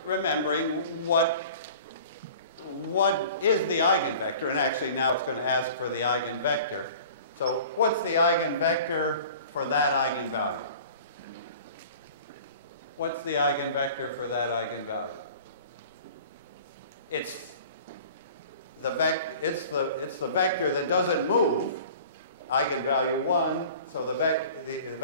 remembering what is the eigenvector. And actually now it's going to ask for the eigenvector. So what's the eigenvector for that eigenvalue? What's the eigenvector for that eigenvalue? It's the vector that doesn't move, eigenvalue 1, so the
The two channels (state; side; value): inverted; both; correlation -0.44